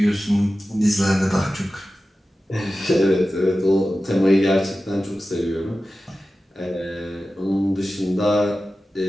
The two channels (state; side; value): normal; both; correlation 0.94